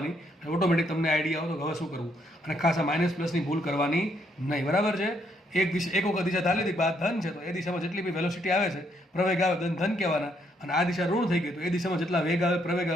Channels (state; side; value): normal; both; correlation 0.72